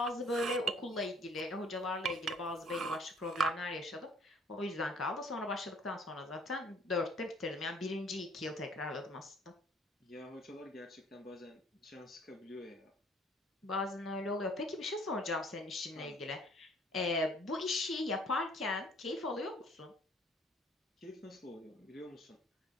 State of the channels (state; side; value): normal; both; correlation 0.57